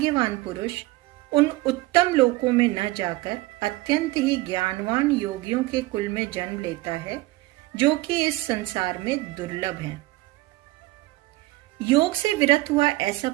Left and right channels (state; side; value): quieter; left; 19.8 dB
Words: पुरुष उन उत्तम लोकों में न जाकर अत्यंत ही ज्ञानवान योगियों के कुल में जन्म लेता है, जो कि इस संसार में दुर्लभ है। योग से विरत हुआ ऐसा